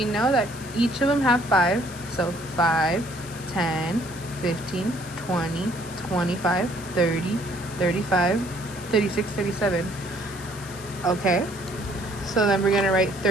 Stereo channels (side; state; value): left; noise; hiss, 16 dB below the sound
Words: know that each of them have 5. So 5, 10, 15, 20, 25, 30, 35, 36, 37. Okay. So then we're going to write